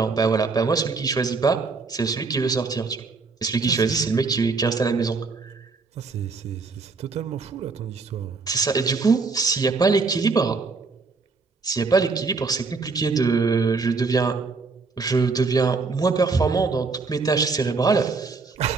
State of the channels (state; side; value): quieter; left; 4.3 dB